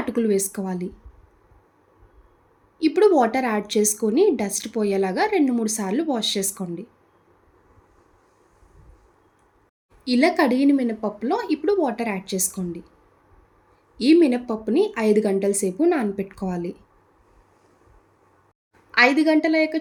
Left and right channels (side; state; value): both; identical; correlation 1.00